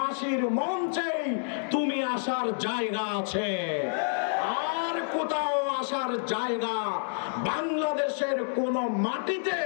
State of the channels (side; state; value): right; silent; digital silence